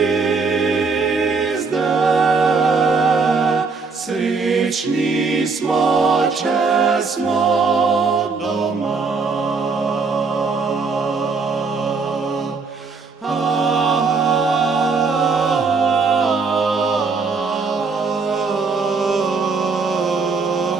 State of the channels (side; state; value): left; quieter; 4.6 dB